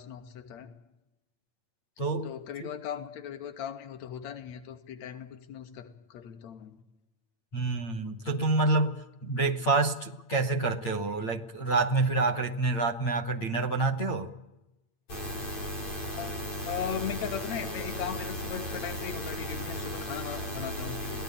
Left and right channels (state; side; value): late; right; 8.8 ms